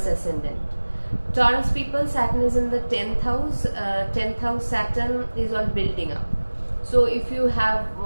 ascendant. Taurus people, Saturn is in the 10th house. 10th house Saturn is on building up. So if you have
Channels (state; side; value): inverted; both; correlation -1.00